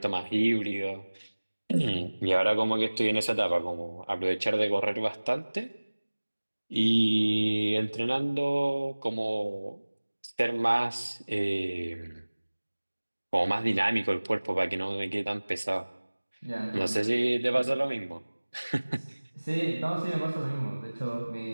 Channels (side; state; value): both; inverted; correlation -1.00